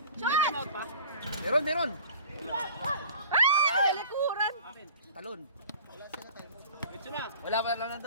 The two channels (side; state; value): both; inverted; correlation -0.44